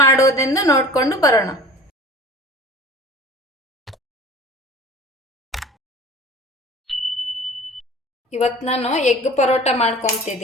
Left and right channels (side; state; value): both; normal; correlation 0.42